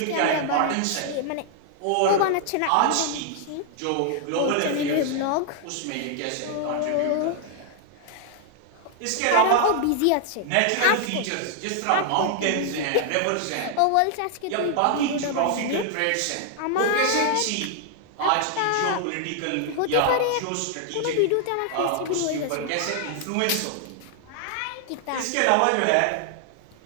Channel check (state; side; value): different; both; correlation 0.00